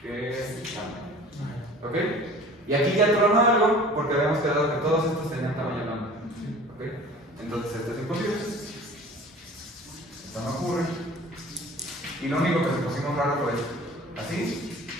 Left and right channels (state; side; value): normal; both; correlation 0.44